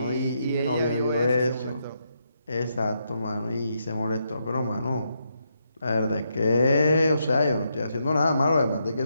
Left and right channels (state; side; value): inverted; both; correlation -0.80